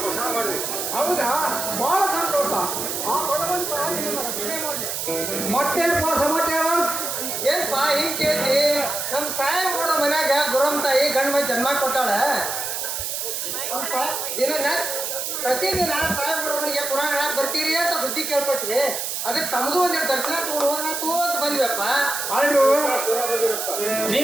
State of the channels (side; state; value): right; noise; hiss, 3 dB below the sound